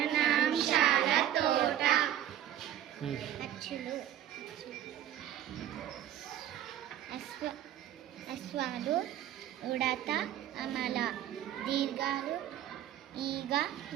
తోట. అచ్చులు, అశ్వాలు, ఉడత, అమల, దీర్ఘాలు, ఈగ,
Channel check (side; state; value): left; quieter; 11.4 dB